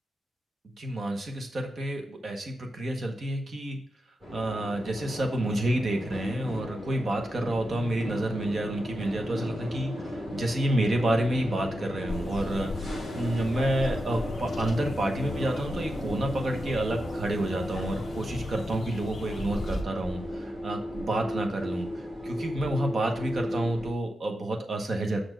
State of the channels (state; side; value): normal; both; correlation 0.88